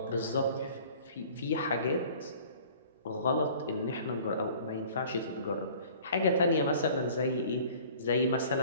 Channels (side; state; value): both; inverted; correlation -0.49